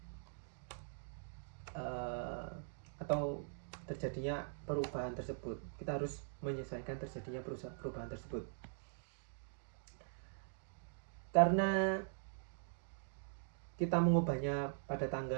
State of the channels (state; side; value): silent; left; digital silence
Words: atau terjadinya perubahan tersebut. Kita harus menyesuaikan terjadinya perubahan tersebut. Karena kita mengubahnya pada